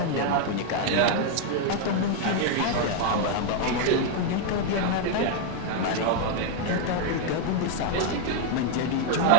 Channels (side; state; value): both; different; correlation 0.00